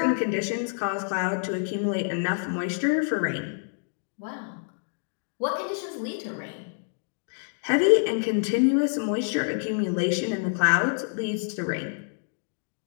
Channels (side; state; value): right; silent; digital silence